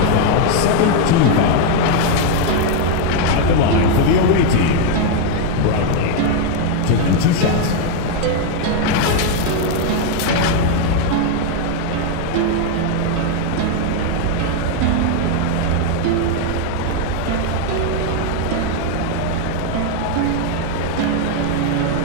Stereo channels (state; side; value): different; both; correlation 0.01